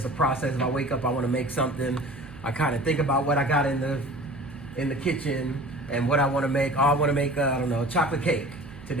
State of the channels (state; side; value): noise; right; hum, 19 dB below the sound